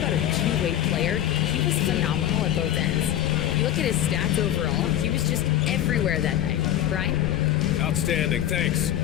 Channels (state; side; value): quieter; right; 11.9 dB